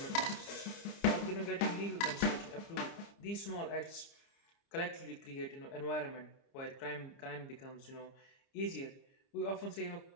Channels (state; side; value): late; right; 30 ms